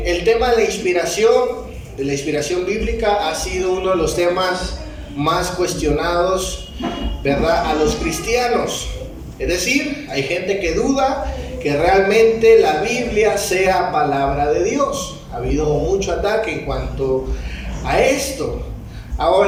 tema de la inspiración bíblica ha sido uno de los temas más cuestionados, ¿verdad?, a los cristianos. Es decir, hay gente que duda que realmente la Biblia sea palabra de Dios. Ha habido mucho ataque en cuanto a esto.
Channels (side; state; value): both; identical; correlation 1.00